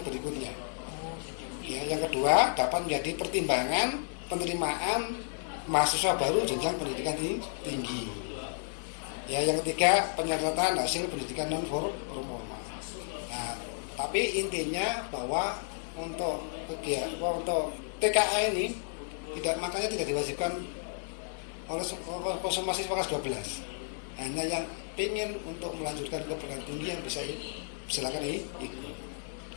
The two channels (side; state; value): right; silent; digital silence